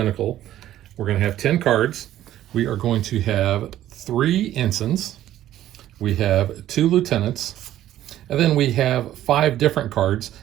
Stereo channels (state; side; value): quieter; left; 12.9 dB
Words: We're going to have 10 cards. We are going to have 3 ensigns. We have 2 lieutenants. And then we have 5 different cards.